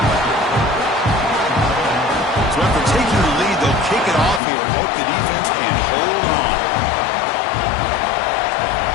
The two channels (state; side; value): drops out; right; at 4.4 s